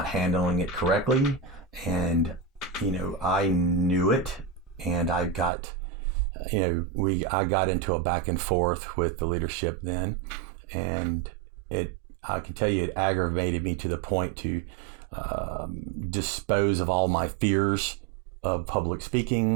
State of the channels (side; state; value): left; drops out; at 5.5 s